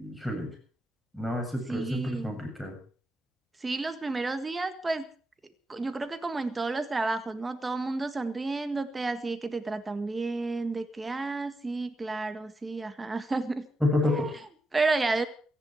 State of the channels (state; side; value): normal; both; correlation 0.86